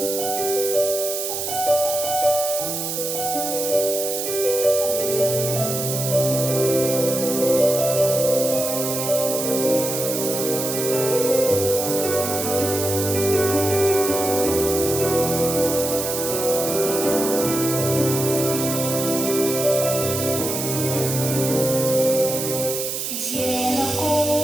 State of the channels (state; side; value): noise; right; hiss, 3 dB below the sound